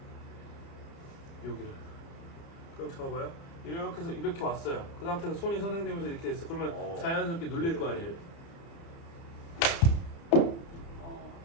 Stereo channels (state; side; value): late; right; 30 ms